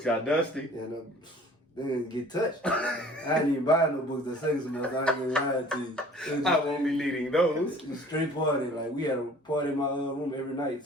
got dusty. and they didn't get touched. I didn't even buy no books that second semester. I ain't gonna lie to you. I won't be needing those. It was straight party. Like we had a party in my room every night,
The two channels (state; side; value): normal; both; correlation 0.50